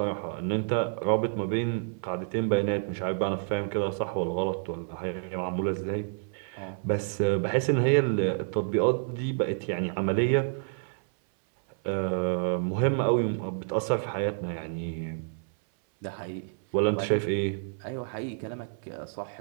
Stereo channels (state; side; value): silent; left; 59 dB below the other